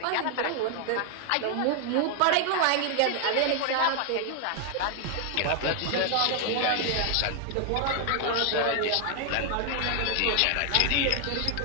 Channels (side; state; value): both; different; correlation 0.00